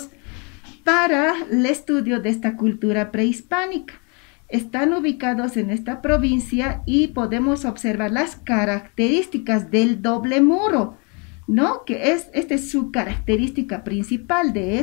para el estudio de esta cultura prehispánica. Están ubicados en esta provincia y podemos observar las características del doble muro, ¿no? Esta es su característica principal de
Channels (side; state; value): right; quieter; 33.3 dB